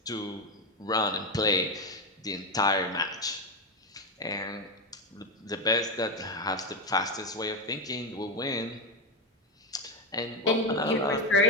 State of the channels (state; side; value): normal; both; correlation 0.10